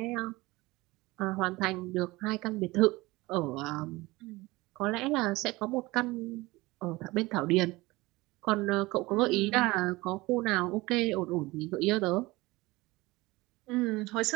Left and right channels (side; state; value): left; quieter; 21.1 dB